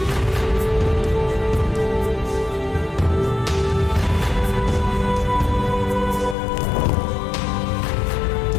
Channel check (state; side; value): drops out; right; at 6.4 s